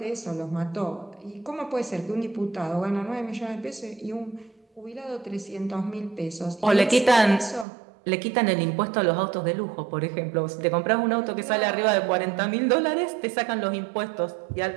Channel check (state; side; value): drops out; left; at 7.7 s